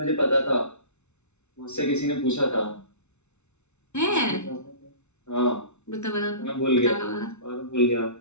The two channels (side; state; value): right; late; 0.82 ms